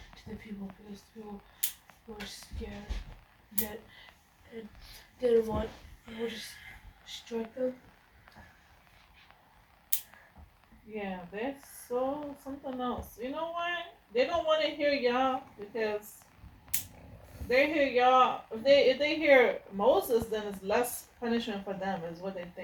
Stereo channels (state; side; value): identical; both; correlation 1.00